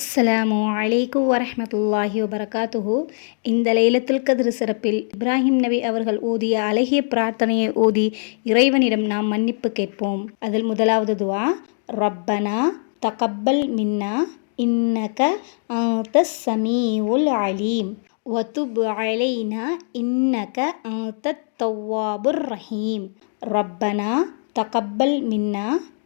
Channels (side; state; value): right; silent; digital silence